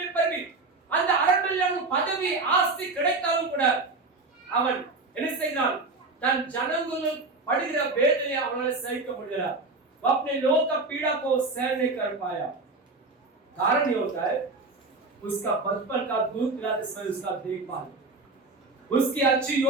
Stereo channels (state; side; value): quieter; left; 3.5 dB